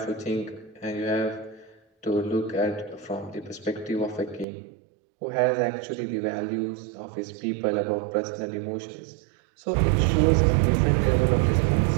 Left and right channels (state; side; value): drops out; left; at 4.5 s